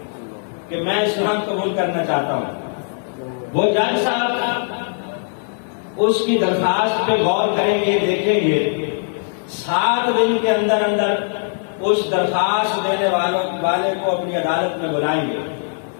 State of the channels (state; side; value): silent; right; 66 dB below the other